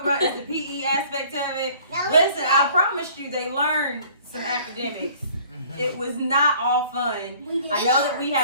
about is the PE aspect of it? Listen, I promised you they learned some academics. It was not all fun. I know that we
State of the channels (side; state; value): both; inverted; correlation -0.53